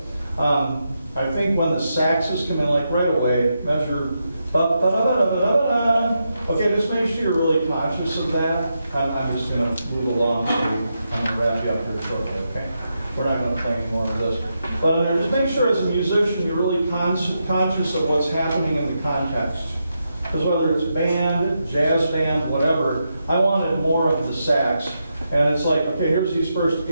I think when the saxes come in, like right away, measure. Okay, just make sure you're really conscious of that. I'm just going to move along, so I'm going to wrap you up here shortly, okay? We're not going to play any more of this. But just make sure as a musician you're really conscious of what's happening in the context. Because whether it's band, jazz band, whatever, I wanted more of the sax. And it's like, okay, here's these first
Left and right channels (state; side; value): inverted; both; correlation -0.85